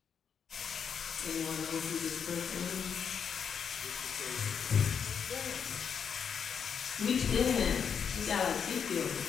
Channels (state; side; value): quieter; right; 7.1 dB